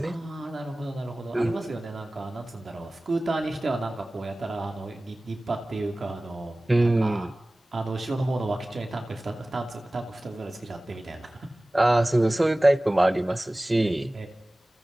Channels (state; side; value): normal; both; correlation 0.98